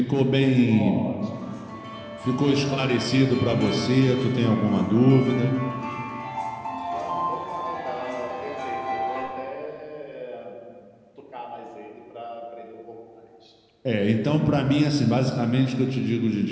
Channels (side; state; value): both; identical; correlation 1.00